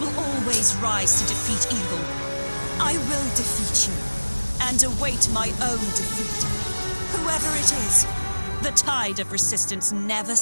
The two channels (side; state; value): both; inverted; correlation -1.00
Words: always rise to defeat evil. I will defeat you, and await my own defeat. Whoever it is, the tide of resistance never